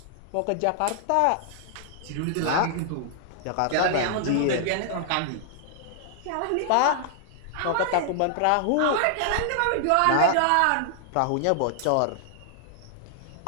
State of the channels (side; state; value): both; different; correlation -0.01